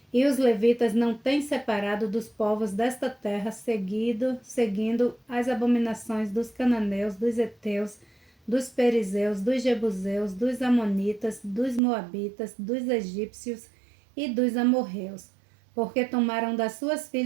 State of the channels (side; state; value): left; drops out; at 11.8 s